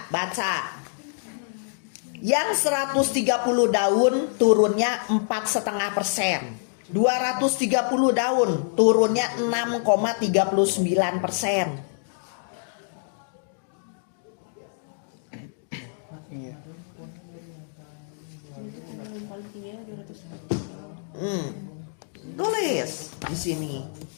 baca. Yang 130 daun turunnya 4,5%. 230 daun turunnya 6,39%. Iya. Yang paling tinggi 200. Tulis di sini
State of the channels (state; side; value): silent; right; digital silence